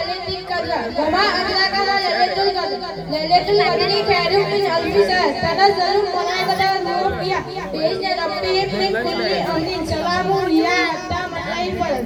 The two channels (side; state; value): both; identical; correlation 1.00